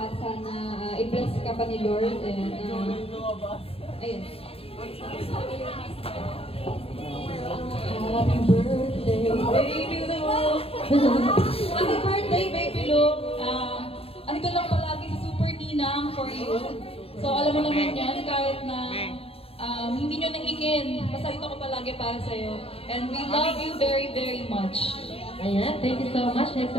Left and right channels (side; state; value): right; late; 0.28 ms